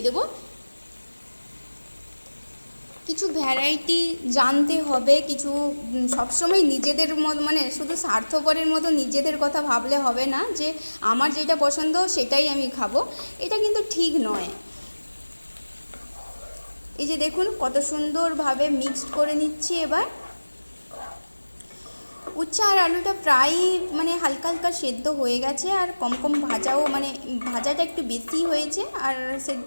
দেবো। কিছু ভ্যারাইটি জানতে হবে, কিছু সবসময় নিজেদের মানে শুধু স্বার্থপরের মতো নিজেদের কথা ভাবলে হবে না যে আমার যেটা পছন্দ সেটাই আমি খাবো, এটা কিন্তু ঠিক নয়। এই যে দেখুন কত সুন্দরভাবে মিক্সড করে নিচ্ছি। এবার উচ্ছে আর আলুটা প্রায় মানে হালকা হালকা সেদ্ধ হয়ে গেছে, আর কম কম ভাজাও, মানে ভাজাটা একটু বেশি হয়েছে, আর সেদ্ধ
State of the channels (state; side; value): inverted; both; correlation -1.00